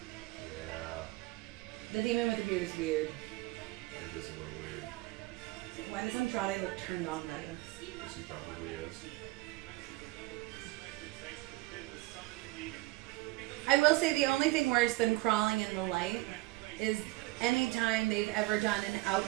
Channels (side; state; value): left; quieter; 20.7 dB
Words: Yeah. The demon with the beard is weird. It is a little weird. Why does Andrade look turned on by this? Yes, he probably is. I will say the only thing worse than crawling in the light is anytime they've ever done an